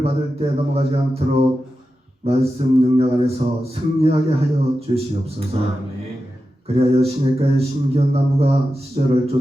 받을 때 넘어가지 않도록 말씀 능력 안에서 승리하게 하여 주시옵소서. 아멘. 그리하여 시냇가의 심기운 나무가 시절을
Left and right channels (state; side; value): normal; both; correlation 0.91